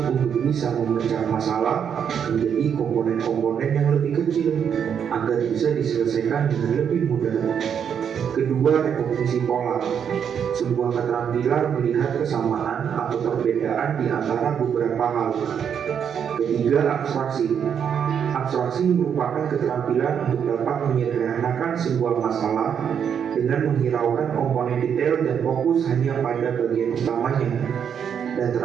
untuk bisa memecah masalah menjadi komponen-komponen yang lebih kecil agar bisa diselesaikan dengan lebih mudah. Kedua, rekomposisi pola. Sebuah keterampilan melihat kesamaan atau perbedaan di antara beberapa hal. Ketiga, abstraksi. Abstraksi merupakan keterampilan untuk dapat menyederhanakan sebuah masalah dengan menghiraukan komponen detail dan fokus hanya pada bagian utamanya. Dan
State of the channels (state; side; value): quieter; left; 7.9 dB